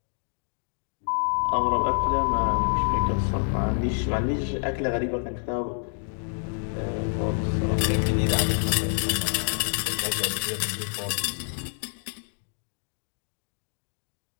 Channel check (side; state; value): right; silent; digital silence